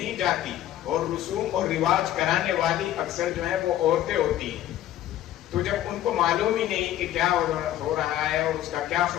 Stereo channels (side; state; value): right; quieter; 12.7 dB